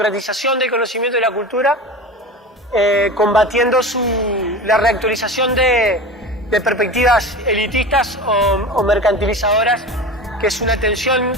del conocimiento y la cultura, combatiendo la reactualización de perspectivas elitistas o mercantilizadoras, que es una tensión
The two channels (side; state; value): both; normal; correlation 0.30